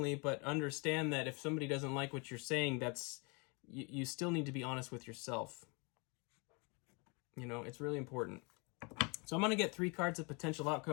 but understand that if somebody doesn't like what you're saying, you still need to be honest with yourself. It's really important. So I'm going to get 3 cards of potential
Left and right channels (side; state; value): right; quieter; 31.3 dB